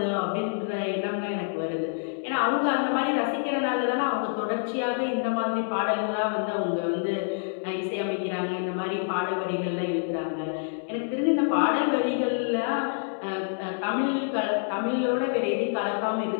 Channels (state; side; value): silent; right; digital silence